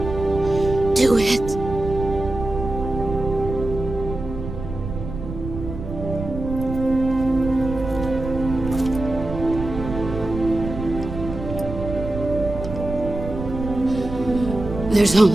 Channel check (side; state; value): right; noise; rumble, 8 dB below the sound